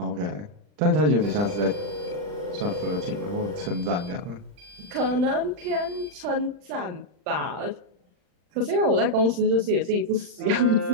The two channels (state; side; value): late; left; 39 ms